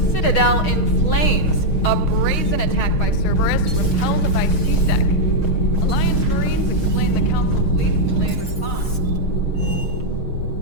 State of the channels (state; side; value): late; right; 6.4 ms